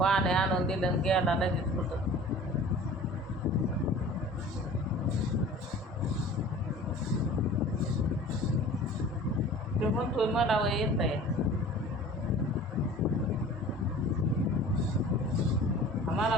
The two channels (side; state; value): both; normal; correlation 0.43